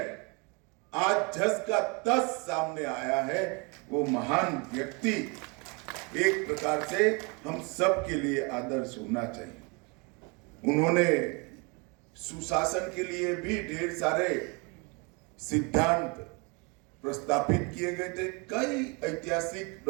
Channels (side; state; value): left; quieter; 30.9 dB